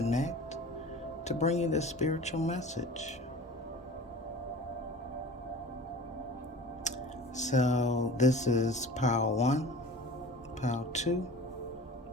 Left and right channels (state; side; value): normal; both; correlation 0.39